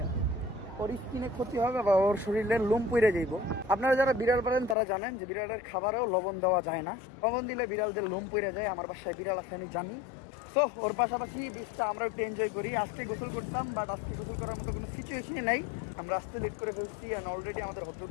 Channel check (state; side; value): drops out; right; at 4.8 s